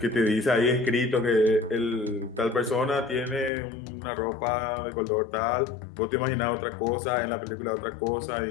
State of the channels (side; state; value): right; drops out; at 3.5 s